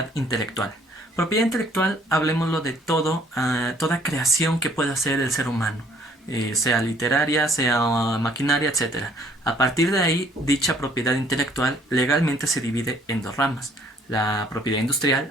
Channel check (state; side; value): normal; both; correlation 0.60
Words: intelectual. Propiedad intelectual, hablemoslo de toda creación que pueda hacer el ser humano, sea literaria, sea maquinaria, etcétera. A partir de ahí, dicha propiedad intelectual legalmente se divide en dos ramas, la propiedad